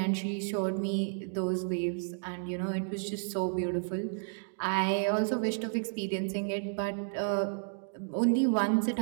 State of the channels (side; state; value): left; silent; digital silence